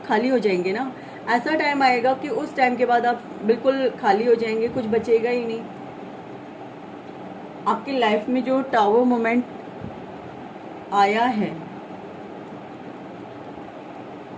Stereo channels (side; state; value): both; identical; correlation 1.00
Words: खाली हो जाएंगे ना। ऐसा टाइम आएगा कि उस टाइम के बाद आप बिल्कुल खाली हो जाएंगे, कुछ बचेगा ही नहीं। आपकी लाइफ में जो टावर मोमेंट आया है,